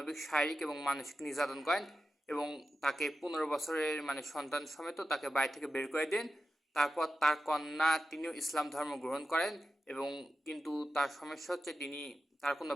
শারীরিক এবং মানসিক নির্যাতন করেন এবং তাকে 15 বছরের সন্তান সমেত তাকে বাড়ি থেকে বের করে দেন। তারপর তার কন্যা তিনিও ইসলাম ধর্ম গ্রহণ করেন এবং কিন্তু তার সমস্যা হচ্ছে তার কোনো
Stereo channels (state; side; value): normal; both; correlation 0.92